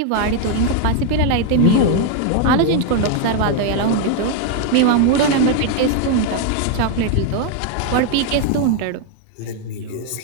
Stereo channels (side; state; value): both; different; correlation 0.01